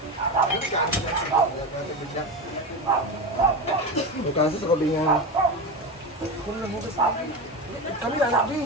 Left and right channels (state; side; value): normal; both; correlation 0.21